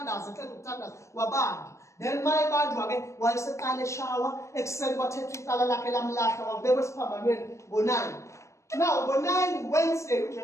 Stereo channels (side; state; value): right; late; 0.14 ms